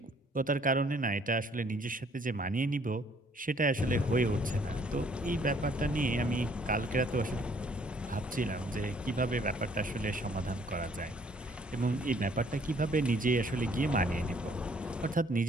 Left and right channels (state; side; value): normal; both; correlation 0.62